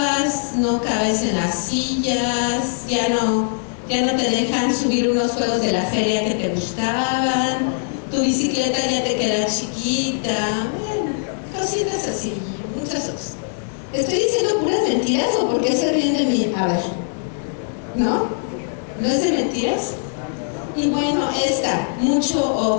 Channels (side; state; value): right; silent; digital silence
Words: no cabes en las sillas, ya no te dejan subir unos juegos de la feria que te gustaban, tu bicicleta ya te queda chiquita. Cositas así, muchas cosas. ¿Estoy diciendo puras mentiras o por qué se ríen de mí? A ver, ¿no? ¿No es de mentiras? Y bueno, mucho